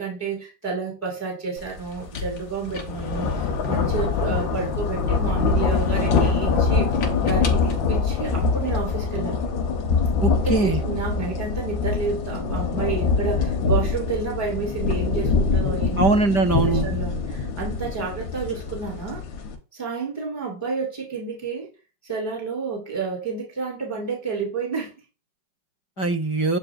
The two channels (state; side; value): late; right; 5.1 ms